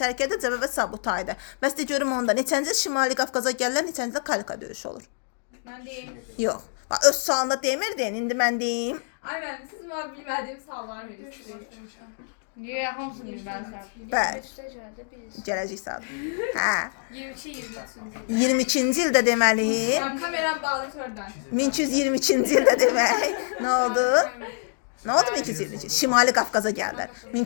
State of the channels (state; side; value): silent; right; digital silence